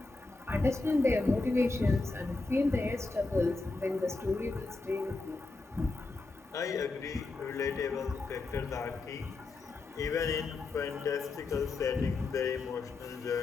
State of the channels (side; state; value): right; quieter; 3.5 dB